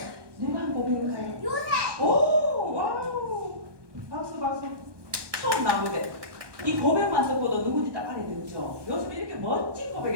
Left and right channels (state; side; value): late; left; 1.2 ms